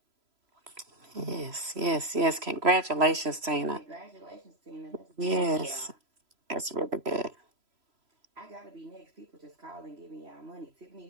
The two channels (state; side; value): late; left; 3.0 ms